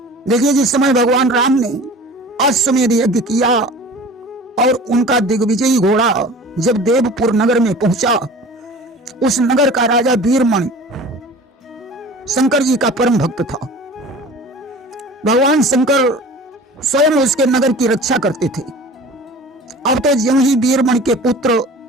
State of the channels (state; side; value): normal; both; correlation 0.41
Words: देखिए, जिस समय भगवान राम ने अश्वमेध यज्ञ किया और उनका दिग्विजयी घोड़ा जब देवपुर नगर में पहुंचा, उस नगर का राजा वीरमणि शंकर जी का परम भक्त था। भगवान शंकर स्वयं उसके नगर की रक्षा करते थे। अब तो ज्यों ही वीरमणि के पुत्र